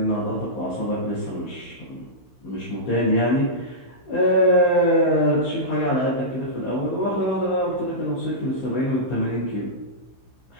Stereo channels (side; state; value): right; late; 16 ms